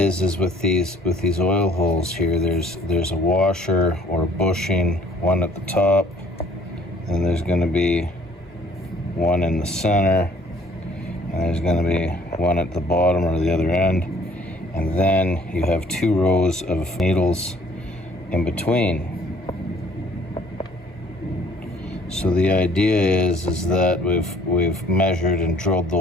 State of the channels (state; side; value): normal; both; correlation 0.58